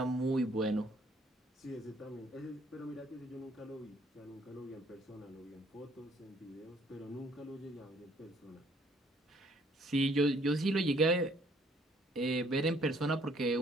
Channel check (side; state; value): both; normal; correlation 0.63